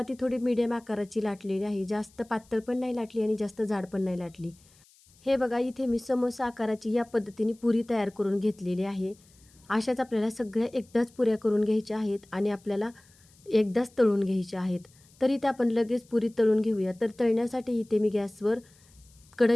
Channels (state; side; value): noise; left; hiss, 29 dB below the sound